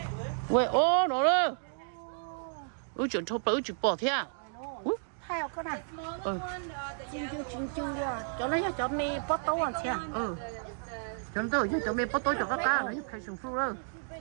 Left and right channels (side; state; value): left; silent; digital silence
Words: 喂, nó đó. Chuyện thô bự chuyện bỏ thế à? Hai cái này. Chinh rồi. Cho nó cho mì bắt tấu ăn thế. Cho nó cho mì bắt tấu cho các cá nó phải sùng phu đó.